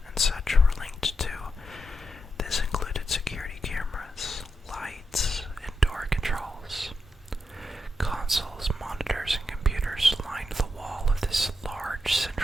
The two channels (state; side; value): normal; both; correlation 0.85